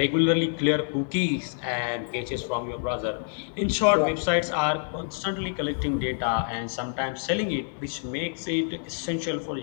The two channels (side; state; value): right; silent; digital silence